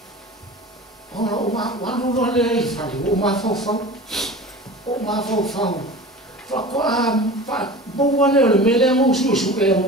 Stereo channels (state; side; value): normal; both; correlation 0.36